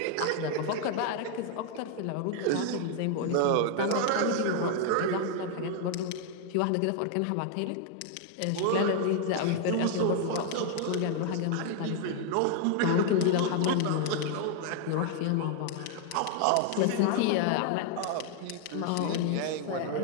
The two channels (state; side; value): different; both; correlation 0.00